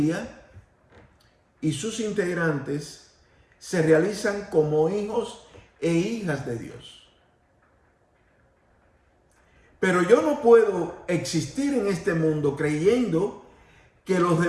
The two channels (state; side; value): identical; both; correlation 1.00